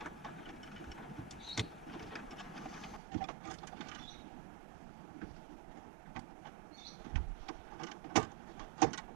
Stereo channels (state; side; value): drops out; left; at 3.0 s